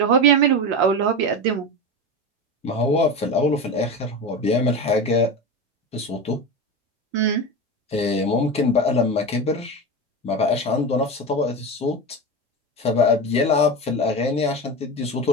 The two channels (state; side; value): normal; both; correlation 0.22